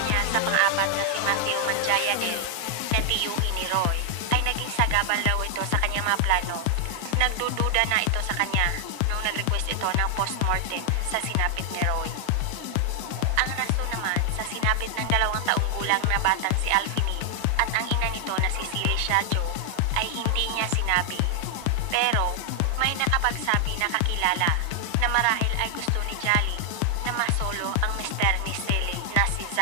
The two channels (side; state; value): both; different; correlation 0.00